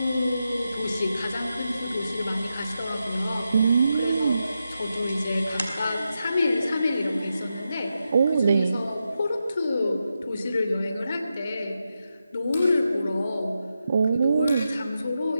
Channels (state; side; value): inverted; both; correlation -0.88